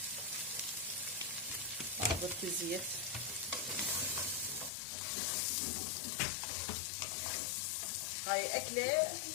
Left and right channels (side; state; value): right; drops out; at 4.7 s